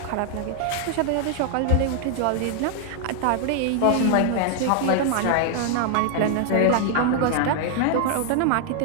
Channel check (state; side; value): different; both; correlation 0.00